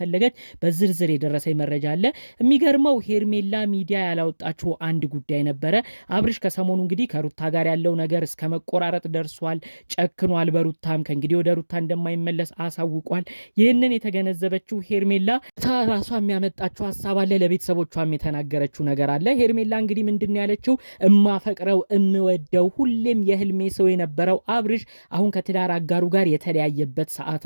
በዝርዝር የደረሰኝ መረጃ አለ። የሚገርመው ሄርሜላ ሚዲያ ያላወጣችው አንድ ጉዳይ ነበረ። አብርሽ ከሰሞኑ እንግዲህ ከሩታ ጋር ያለው ነገር እስከ መቆራረጥ ደርሷል። ጨክኗል። በሩታም ከእንግዲህ ወደ ሩታ እንደማይመለስ አሳውቋል። ይህንን የተገነዘበችው ሄርሜላ ራሷ የሚያመጣችው ሀሳብ አለ። ለቤተሰቦቿም የተናገረችው ነገር አለ። ሄርሜላ እንግዲህ ምንድን ያለችው እማፈቅረው እምወደው ሁሌም የህልሜ ሰው የነበረው አብርሽ አሁን ከትዳር አጋሩ ጋር የተለያየበት ሰዓት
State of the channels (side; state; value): both; inverted; correlation -1.00